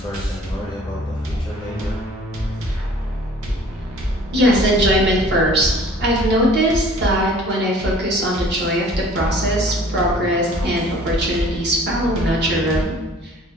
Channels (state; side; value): normal; both; correlation 0.50